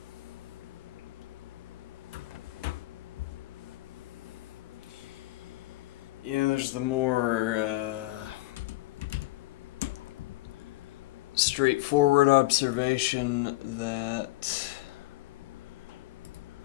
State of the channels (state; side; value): quieter; right; 19.5 dB